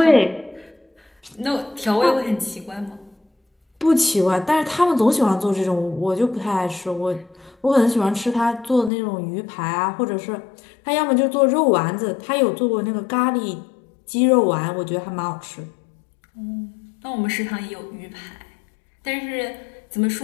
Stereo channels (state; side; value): drops out; right; at 8.9 s